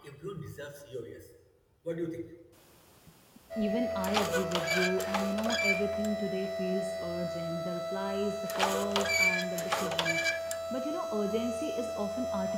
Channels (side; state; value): both; identical; correlation 1.00